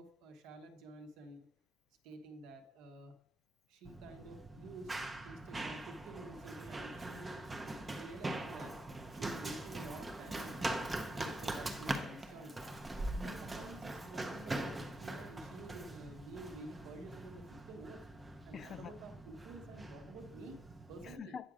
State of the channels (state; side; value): normal; both; correlation 0.85